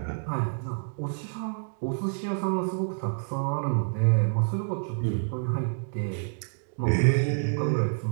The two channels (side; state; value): left; silent; digital silence